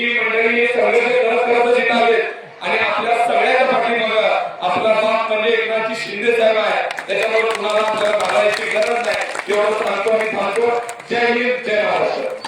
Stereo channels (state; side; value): identical; both; correlation 1.00